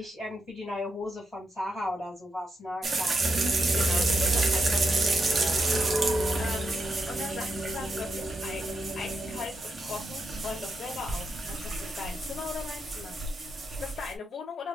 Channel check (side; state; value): both; normal; correlation 0.84